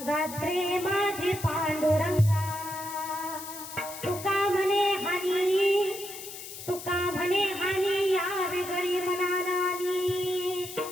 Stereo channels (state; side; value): noise; left; hiss, 11 dB below the sound